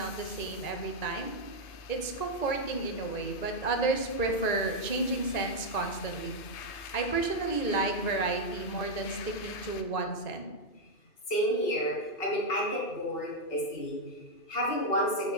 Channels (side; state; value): right; late; 2.5 ms